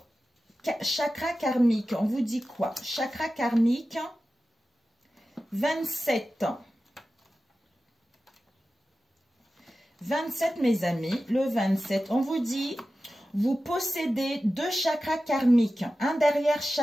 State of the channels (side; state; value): both; normal; correlation 0.94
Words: chakra karmique, on vous dit quoi? Chakra karmique, 27. 27, mes amis, le 27, on vous dit, vous possédez 2 chakras karmiques, un derrière